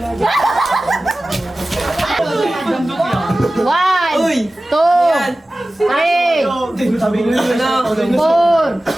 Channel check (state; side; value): normal; both; correlation 0.96